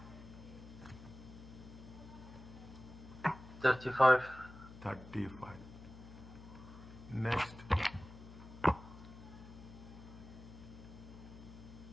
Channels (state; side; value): noise; left; hum, 15 dB below the sound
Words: 35. 35. Next.